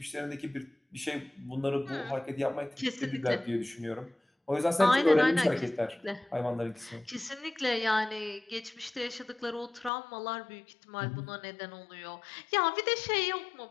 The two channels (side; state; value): right; drops out; at 9.9 s